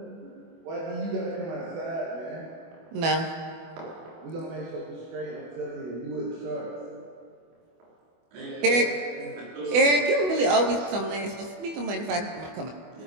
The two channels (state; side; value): late; left; 24 ms